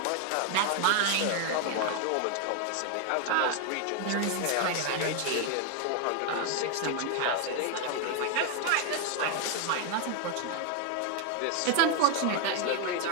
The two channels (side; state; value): both; different; correlation 0.01